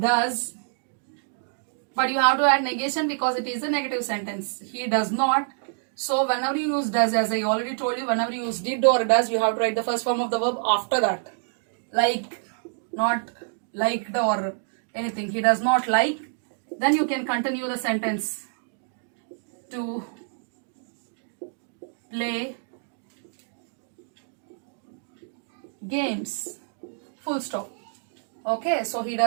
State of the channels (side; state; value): left; silent; digital silence